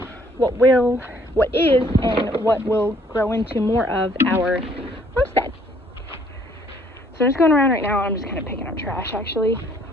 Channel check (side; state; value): both; normal; correlation 0.62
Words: what is and what will grow into more of our homestead. So I'm just going around right now. I'm just kind of picking up trash actually,